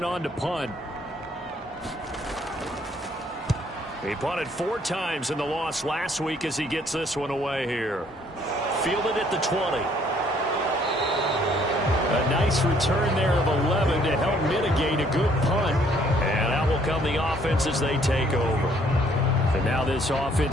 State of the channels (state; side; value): normal; both; correlation 0.64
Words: on to punt. He punted 4 times in the loss last week as he gets this one away here. Fielded at the 20. A nice return there of 11 to help mitigate a good punt. And out will come the offense as they take over. And now this